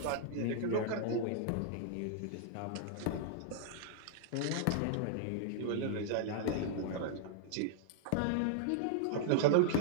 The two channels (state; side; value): different; both; correlation -0.01